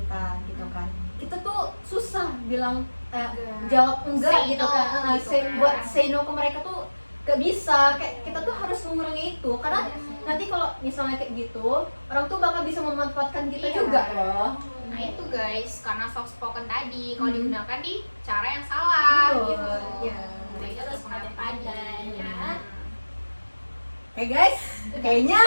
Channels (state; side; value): inverted; both; correlation -1.00